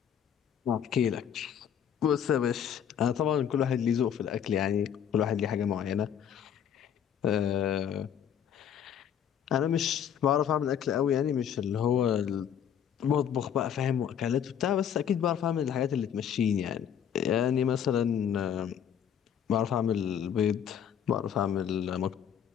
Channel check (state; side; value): quieter; right; 8.8 dB